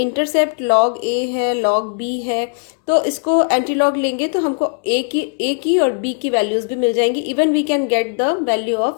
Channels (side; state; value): right; quieter; 39.0 dB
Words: log a है, log b है, तो इसको एंटी लॉग लेंगे तो हमको a की और b की वैल्यूज भी मिल जाएंगी। Even we can get the value